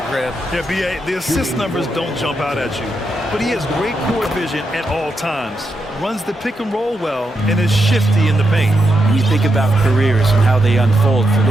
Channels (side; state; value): both; normal; correlation 0.83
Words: Grant. Yeah, B.A., the assist numbers don't jump out at you. But he has great court vision at all times. Runs the pick and roll well and is shifty in the paint. When you think about careers and how they unfold, for